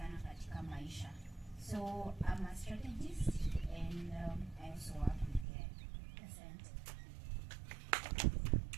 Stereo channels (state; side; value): drops out; left; at 5.5 s